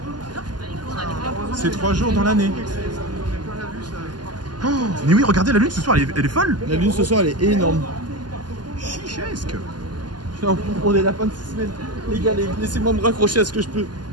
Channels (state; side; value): late; left; 0.70 ms